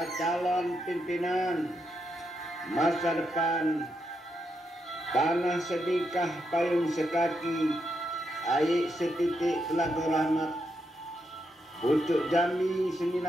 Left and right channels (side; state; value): both; normal; correlation 0.82